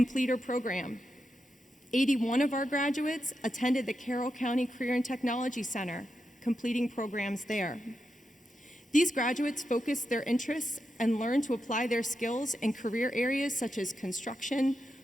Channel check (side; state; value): both; normal; correlation 0.86